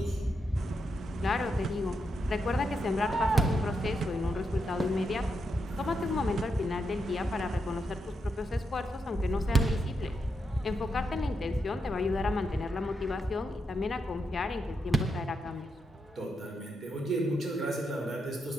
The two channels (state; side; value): normal; both; correlation 0.83